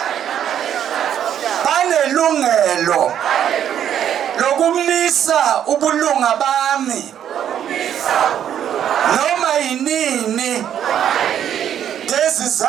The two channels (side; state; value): left; quieter; 9.8 dB